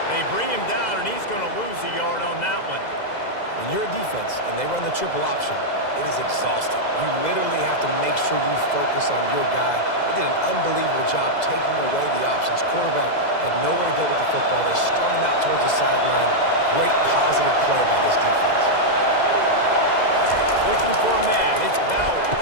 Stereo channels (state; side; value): late; right; 2.0 ms